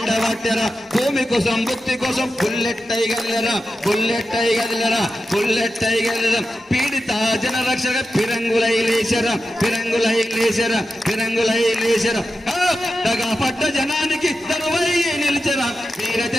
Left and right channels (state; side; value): normal; both; correlation 0.91